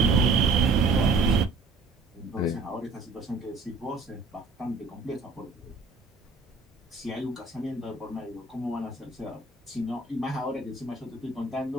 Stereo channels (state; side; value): quieter; left; 3.7 dB